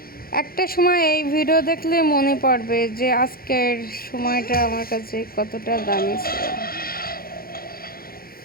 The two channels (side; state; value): right; late; 0.43 ms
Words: একটা সময় এই ভিডিও দেখলে মনে পড়বে যে আজকের সময়টা আমার কাছে কতটা দামি ছিল।